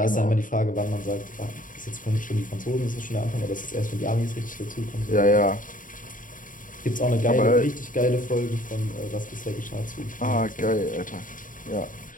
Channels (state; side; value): late; right; 0.39 ms